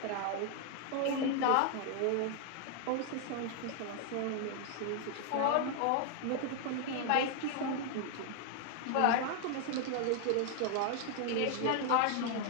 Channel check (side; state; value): both; different; correlation 0.00